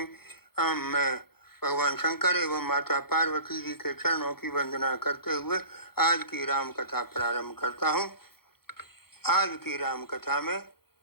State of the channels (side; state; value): right; late; 0.95 ms